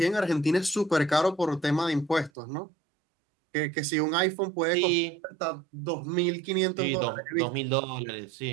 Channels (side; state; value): left; drops out; at 2.3 s